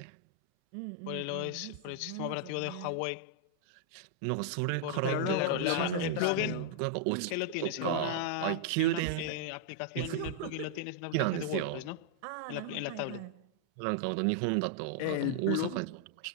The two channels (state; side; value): different; both; correlation -0.01